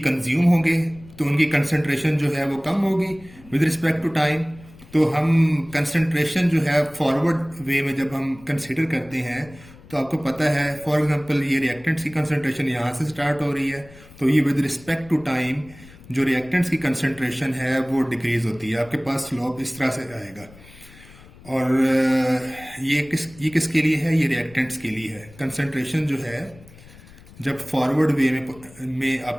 कंज्यूम होंगे, तो उनकी कंसंट्रेशन जो है वो कम होगी विद रिस्पेक्ट टू टाइम। तो हम कंसंट्रेशन जो है फॉरवर्ड वे में जब हम कंसिडर करते हैं तो आपको पता है, फॉर एग्जांपल ये रिएक्टेंट्स की कंसंट्रेशन यहाँ से स्टार्ट हो रही है, तो ये विद रिस्पेक्ट टू टाइम जो रिएक्टेंट्स की कंसंट्रेशन है वो डिक्रीज होती है। आपके पास स्लोप इस तरह से आएगा। और ये किसके लिए है, ये रिएक्टेंट्स के लिए है। कंसंट्रेशन जो है जब फॉरवर्ड वे में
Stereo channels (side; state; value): left; noise; rumble, 22 dB below the sound